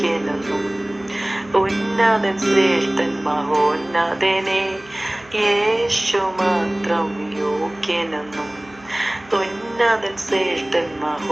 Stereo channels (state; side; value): noise; right; hum, 25 dB below the sound